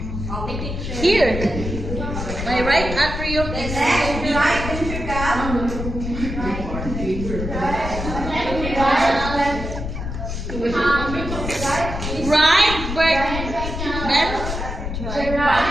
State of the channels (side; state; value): left; noise; rumble, 5 dB below the sound